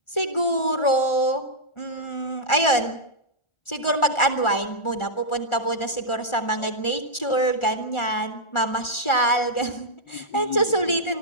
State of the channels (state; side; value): late; right; 1.4 ms